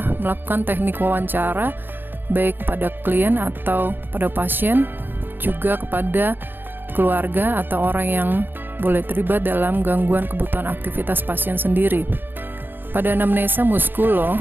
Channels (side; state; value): left; late; 0.095 ms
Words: melakukan teknik wawancara, baik pada klien atau pada pasien, juga kepada keluarga atau orang yang boleh terlibat dalam gangguan kebutuhan aktivitas pasien sendiri. Pada anamnesa muskulo